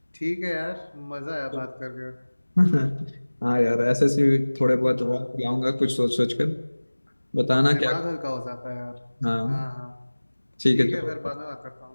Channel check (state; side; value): inverted; both; correlation -1.00